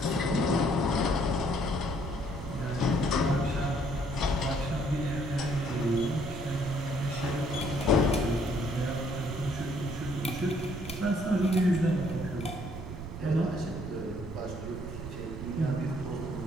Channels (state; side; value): noise; right; rumble, 10 dB below the sound